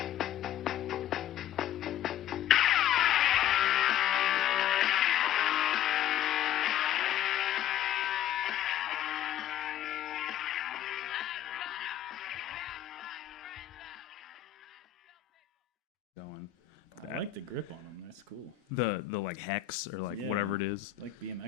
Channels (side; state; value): right; quieter; 11.5 dB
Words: I like the grip on them. That's cool. The like hex or like whatever it is. Like